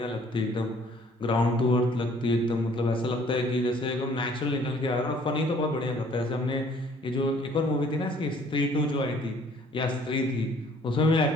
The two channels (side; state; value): both; normal; correlation 0.58